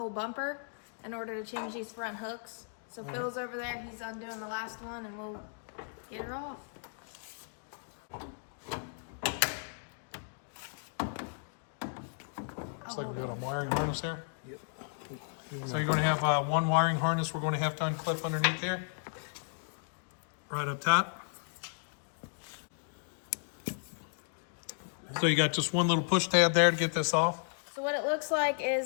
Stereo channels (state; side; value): silent; right; digital silence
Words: bumper in order to change these front hooks. So Phil's over there, he's undoing the last one, and we'll get her off. Looks like we got a wiring harness here. Yep. So you're going to have one wiring harness we're going to have to unclip underneath here. Right up top. So you got just one little push tab there to get this off. So what it looks like